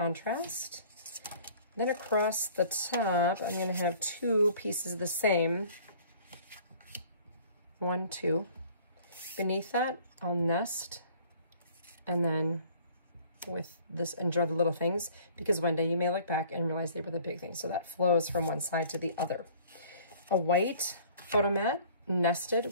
Then across the top, I'm going to have 2 pieces of the same. 1, 2. Beneath that, I'll nest. And then with this, enjoy the little things, because one day you may look back and realize they were the big things. So that flows from one side to the other. A white photo mat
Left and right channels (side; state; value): both; inverted; correlation -0.53